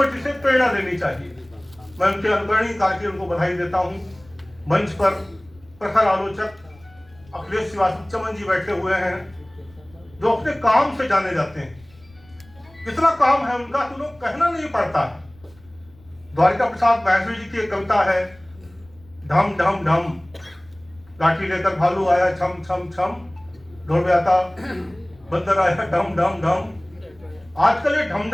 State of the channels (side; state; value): left; noise; rumble, 27 dB below the sound